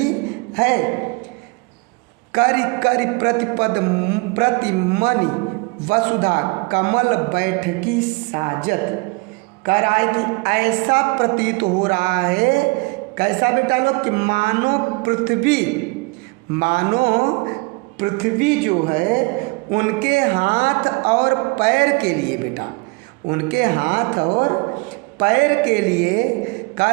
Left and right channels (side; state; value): left; quieter; 27.6 dB